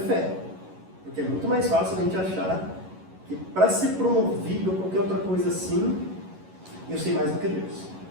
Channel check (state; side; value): late; left; 11 ms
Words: Porque é muito mais fácil a gente achar que para ser promovido ou qualquer outra coisa assim, eu sei mais do que Deus.